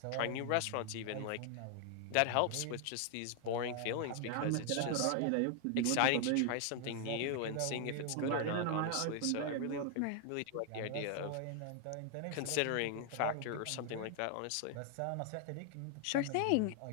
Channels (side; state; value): both; different; correlation 0.00